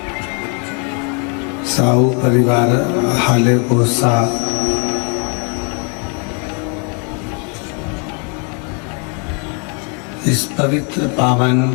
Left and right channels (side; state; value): right; quieter; 37.7 dB